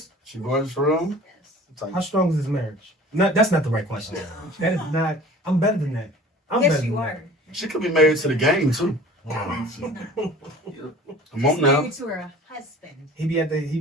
She gorgeous for real? Yes. How strong is his marriage? No, that's not the right question. That is not. I'm better than that. I'm Yes, better you than are. She could be married to the game too. Come on She's now. married to her husband. He be at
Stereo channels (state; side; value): normal; both; correlation 0.44